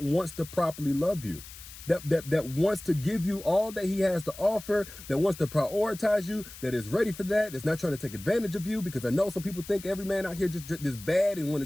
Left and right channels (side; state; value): left; noise; hiss, 16 dB below the sound